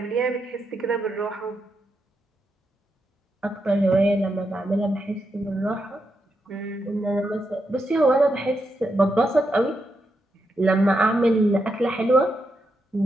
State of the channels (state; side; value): normal; both; correlation 0.84